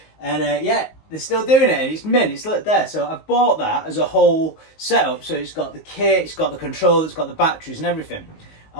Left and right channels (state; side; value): late; right; 19 ms